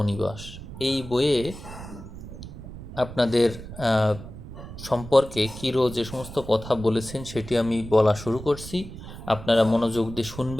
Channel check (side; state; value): right; noise; rumble, 12 dB below the sound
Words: এই বইয়ে আপনাদের সম্পর্কে কিরো যে সমস্ত কথা বলেছেন সেটি আমি বলা শুরু করছি। আপনারা মনোযোগ দিয়ে